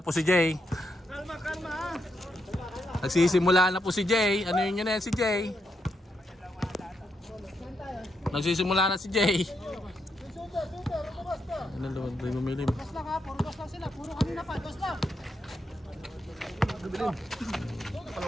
si Jay. Kalma, ha. Nagsisimula na po si Jay. Ano yun yan si Jay? Nagsisimula na si Jay. Ano naman ba yung umilim? Dos lang ha, puro dos lang sila. Puro kanina pa, dos lang.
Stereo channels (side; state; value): both; normal; correlation 0.81